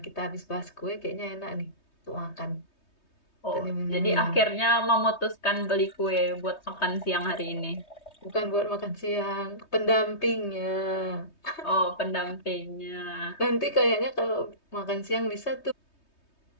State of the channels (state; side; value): late; right; 3.2 ms